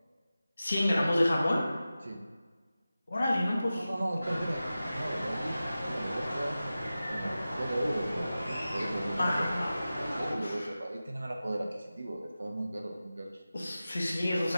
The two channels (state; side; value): inverted; both; correlation -0.95